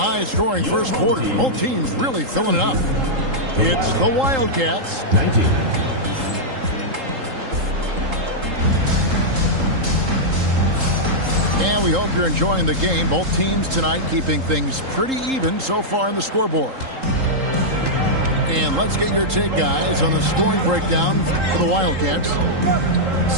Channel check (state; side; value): late; left; 3.8 ms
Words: first quarter. Both teams really filling it up. It's the Wildcats. 19. And we hope you're enjoying the game. Both teams tonight keeping things pretty even so far in the scoreboard. And let's get your take, guys, on the scoring breakdown for the Wildcats.